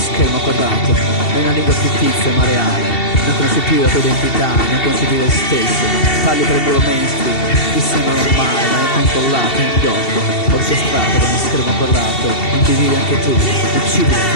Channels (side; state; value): right; late; 2.7 ms